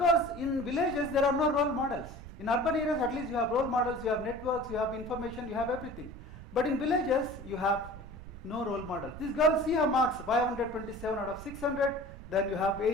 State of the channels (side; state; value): right; noise; rumble, 14 dB below the sound